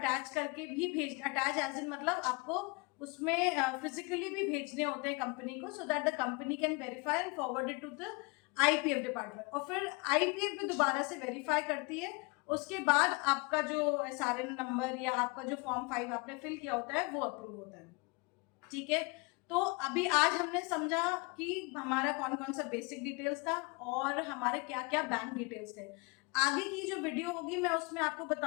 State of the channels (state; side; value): quieter; right; 28.5 dB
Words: करके भी अटैच एज इन मतलब आपको उसमें फिजिकली भी भेजने होते हैं कंपनी को, so that the company can verify and forward it to the IPF department. और फिर आईपीएफ भी दोबारा से वेरीफाई करती है। उसके बाद आपका जो एसआरएन नंबर या आपका जो फॉर्म 5 आपने फिल किया होता है वो अप्रूव होता है। ठीक है, तो अभी आज हमने समझा कि हमारा कौन कौन सा बेसिक डिटेल्स था और हमारे क्या क्या बैंक डिटेल्स थे। आगे की जो वीडियो होगी मैं उसमें आपको